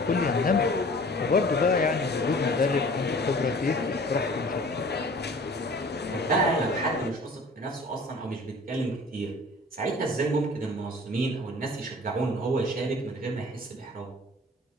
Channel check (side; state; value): both; normal; correlation 0.47